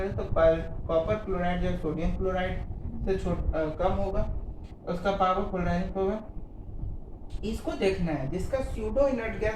है, तो कॉपर क्लोराइड या सोडियम क्लोराइड से कम होगा उसका पावर, पोलराइजिंग पावर। इसको देखना है, जिसका स्यूडो इनर्ट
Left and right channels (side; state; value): both; identical; correlation 1.00